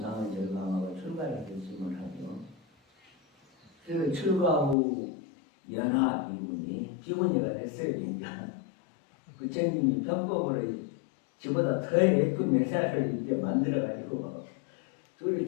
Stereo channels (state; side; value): drops out; right; at 4.8 s